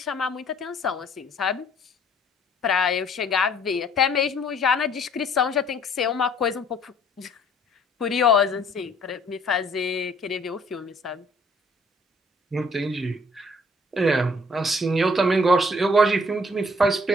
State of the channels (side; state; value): both; normal; correlation 0.59